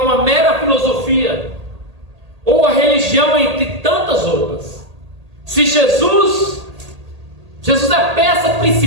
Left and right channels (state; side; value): late; left; 1.8 ms